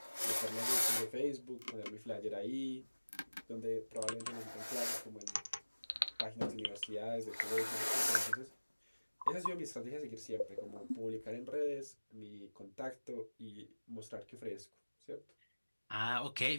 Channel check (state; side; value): inverted; both; correlation -1.00